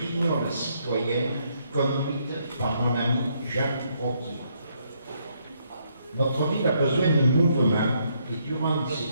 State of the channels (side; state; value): both; inverted; correlation -0.73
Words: citoyenne conduite par mon ami Jacques Roquier. Notre ville a besoin de mouvement et durant